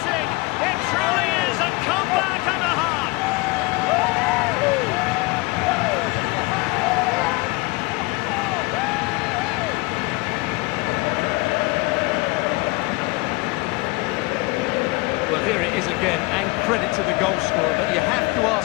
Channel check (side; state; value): right; quieter; 24.4 dB